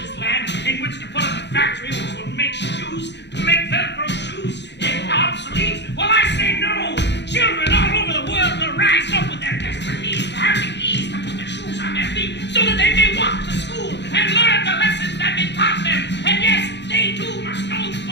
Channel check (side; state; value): right; late; 0.51 ms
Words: this land in which to put up a factory which will make shoes, make Velcro shoes obsolete? Well, I say no! Children all over the world will rise up with their desperate needs to have the ease to put their shoes on their feet so that they may walk to school and learn the lessons that have been taught them. And yes, they too must know the